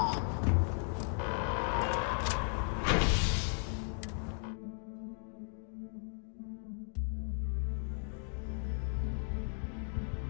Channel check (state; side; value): silent; right; 54 dB below the other